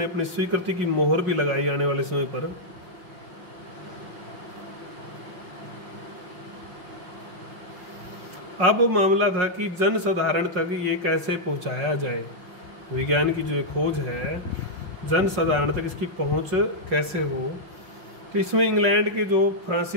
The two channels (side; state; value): left; late; 5.5 ms